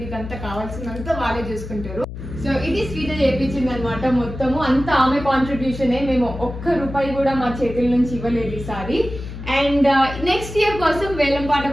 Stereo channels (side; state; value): left; noise; hum, 10 dB below the sound